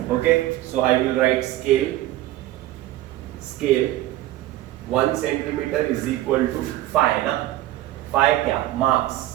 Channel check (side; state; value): left; quieter; 15.1 dB